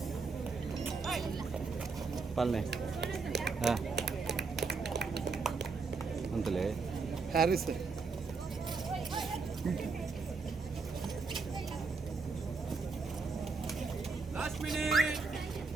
ಪಲ್ಲೆ ಹಾಂ ಅಂತಲೇ Harris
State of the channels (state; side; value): quieter; left; 4.5 dB